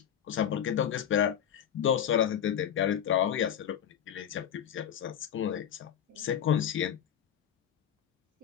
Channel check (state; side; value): quieter; right; 9.3 dB